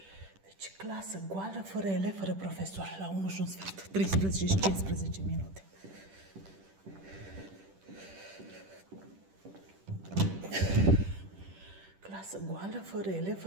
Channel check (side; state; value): left; late; 10 ms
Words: Deci, clasă goală, fără elevi, fără profesor. La 1 și un sfert. 13 și 15 minute. Clasă goală, fără elevi,